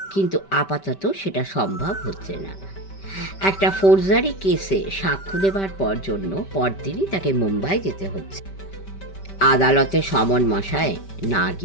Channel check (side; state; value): right; late; 5.2 ms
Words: কিন্তু আপাতত সেটা সম্ভব হচ্ছে না। একটা ফৌজদারি কেসে সাক্ষ্য দেবার জন্য পরদিনই তাকে মুম্বাই যেতে হচ্ছে। আদালতে সমন মশায় না